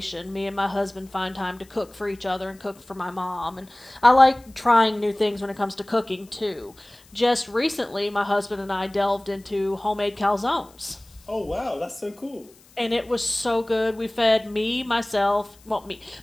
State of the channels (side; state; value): left; noise; hiss, 27 dB below the sound